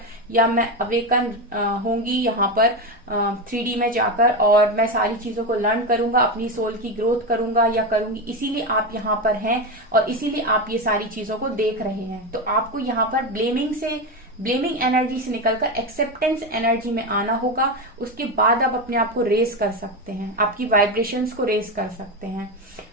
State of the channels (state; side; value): normal; both; correlation 0.15